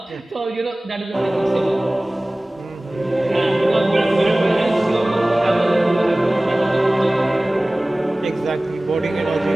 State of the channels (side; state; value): both; normal; correlation 0.98